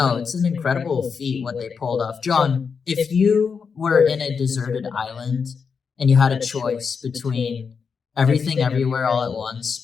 it's an incredible feat what they pulled off. John, if you were in a deserted island and you had a choice between Everything Everywhere All at Once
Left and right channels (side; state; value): right; quieter; 5.8 dB